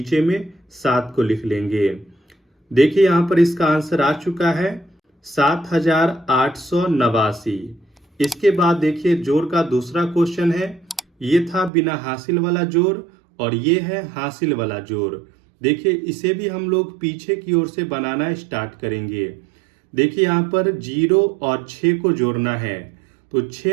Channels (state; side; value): drops out; left; at 11.7 s